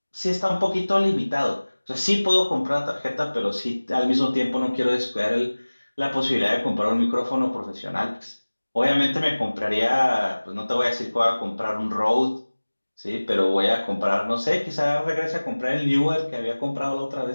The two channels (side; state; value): both; inverted; correlation -1.00